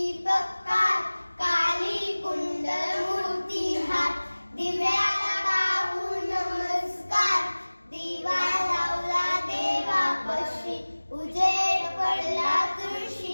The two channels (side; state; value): both; inverted; correlation -1.00